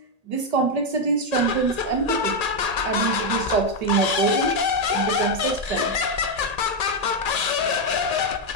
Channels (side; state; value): left; late; 1.8 ms